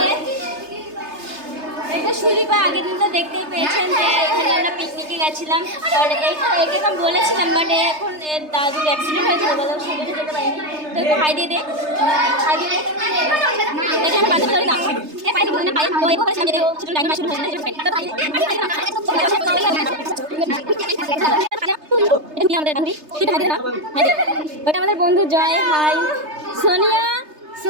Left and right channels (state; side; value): late; left; 3.3 ms